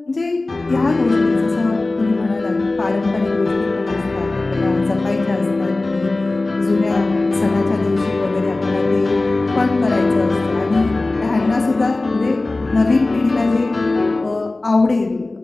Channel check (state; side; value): quieter; right; 3.1 dB